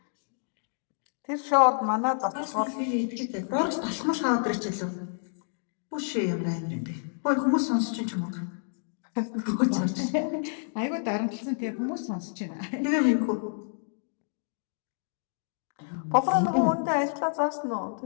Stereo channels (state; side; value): silent; right; digital silence